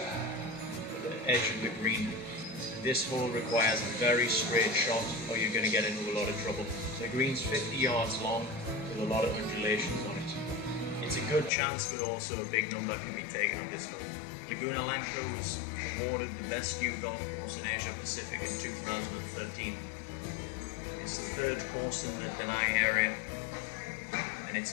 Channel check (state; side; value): drops out; right; at 11.5 s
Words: the edge of the green. This hole requires a very straight shot or you're going to get into a lot of trouble. The green's 50 yards long with a lot of undulations on it. It's a good chance, but also a big number can be taken on this hole. Laguna Lanco was awarded the best new golf course in Asia Pacific in 2013. It's the 3rd course in the Danang area, and it's